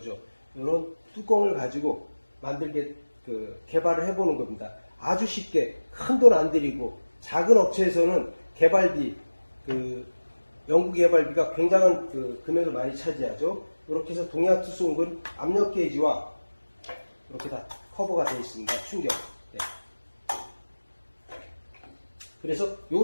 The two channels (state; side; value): inverted; both; correlation -1.00